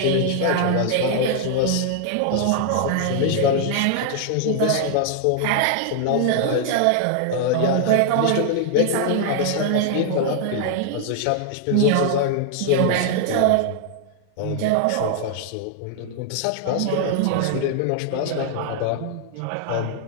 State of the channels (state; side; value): different; both; correlation 0.00